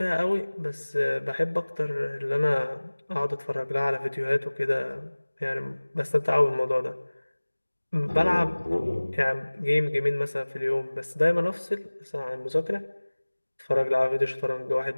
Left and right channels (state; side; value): inverted; both; correlation -1.00